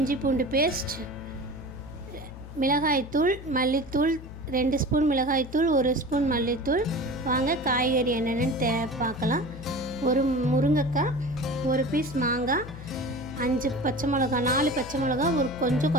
பூண்டு பேஸ்ட், மிளகாய்த்தூள், மல்லித்தூள் 2 ஸ்பூன் மிளகாய்த்தூள், 1 ஸ்பூன் மல்லித்தூள். வாங்க காய்கறி என்னென்னு பார்க்கலாம். ஒரு முருங்கைக்காய், ஒரு பீஸ் மாங்காய், 5 பச்சை மிளகா, 4 பச்சை மிளகா, ஒரு கொஞ்சம்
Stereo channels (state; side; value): noise; left; hum, 14 dB below the sound